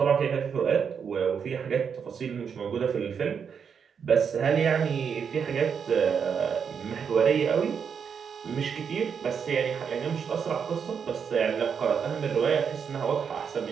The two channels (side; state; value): left; quieter; 6.8 dB